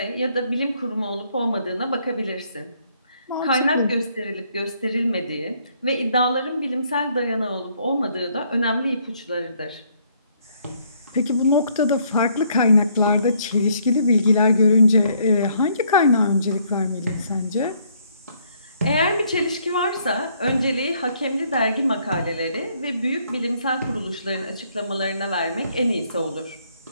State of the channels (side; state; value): both; inverted; correlation -0.67